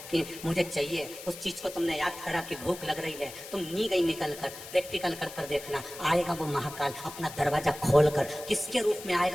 कि मुझे चाहिए, उस चीज को तुमने याद करा कि भूख लग रही है, तुम नी गई निकल कर, प्रैक्टिकल कर देखना। आएगा वो महाकाल अपना दरवाजा खोलकर, किसके रूप में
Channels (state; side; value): noise; left; hiss, 13 dB below the sound